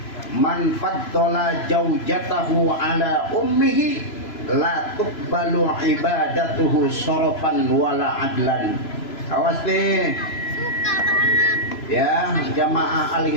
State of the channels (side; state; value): right; late; 3.0 ms